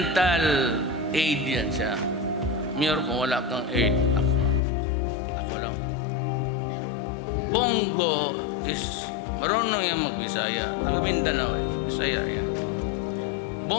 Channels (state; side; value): drops out; right; at 4.6 s